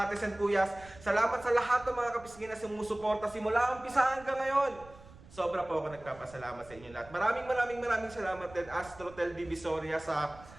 ates and kuyas. Salamat sa lahat ng mga kapisngin na sumusuporta simula umpisa hanggang ngayon. Sobra po ako nagpapasalamat sa inyo lahat. Maraming salamat din Astrotel Divisoria sa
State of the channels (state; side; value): noise; right; rumble, 21 dB below the sound